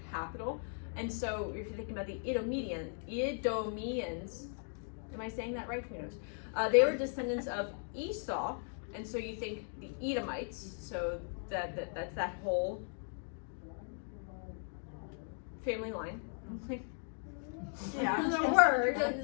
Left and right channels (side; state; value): right; silent; 53 dB below the other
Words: capital. And so if you're thinking about the Edomians, am I saying that right? Who knows? They were descendants of Esau, and so you think the Edomites, so that's that whole family line. Yeah. The word,